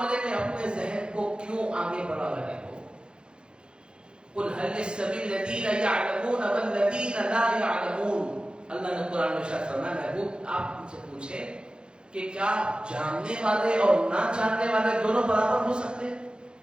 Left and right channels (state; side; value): late; left; 0.051 ms